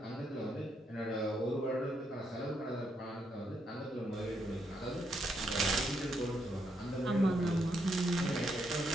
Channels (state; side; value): normal; both; correlation 0.77